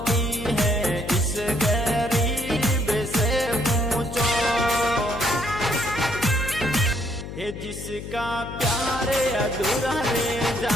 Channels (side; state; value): left; noise; hum, 9 dB below the sound